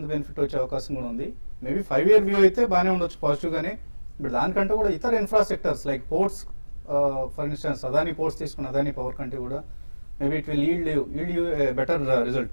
బెనిఫిట్ వచ్చే అవకాశం కూడా ఉంది. మేబీ 5 year వ్యూ అయితే బాగానే ఉండొచ్చు పాజిటివ్ గానే. బట్ దానికంటే కూడా ఇతర infrastructures like ports, for instance Adani ports తీసుకున్న అదానీ పవర్ కంటే కూడా maybe it will yield you better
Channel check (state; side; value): inverted; both; correlation -1.00